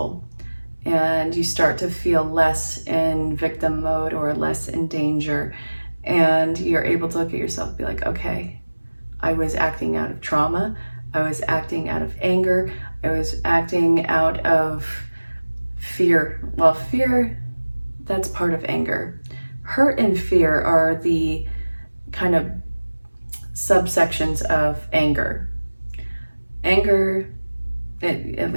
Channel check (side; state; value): both; inverted; correlation -1.00